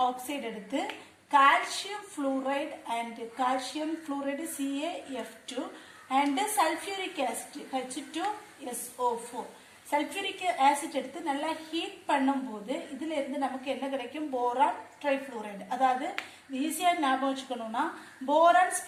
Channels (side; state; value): both; identical; correlation 1.00